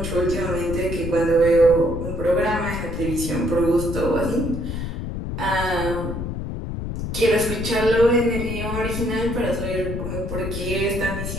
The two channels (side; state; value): left; noise; rumble, 4 dB below the sound